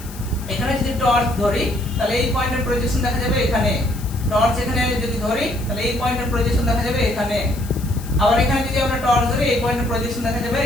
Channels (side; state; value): left; noise; hiss, 17 dB below the sound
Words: এখানে যদি টর্চ ধরি তাহলে এই পয়েন্টের প্রজেকশন দেখা যাবে এখানে, টর্চ এখানে যদি ধরি তাহলে এই পয়েন্টের প্রজেকশন দেখা যাবে এখানে, আবার এখানে যদি আমরা টর্চ ধরি এই পয়েন্টের প্রজেকশন দেখা যাবে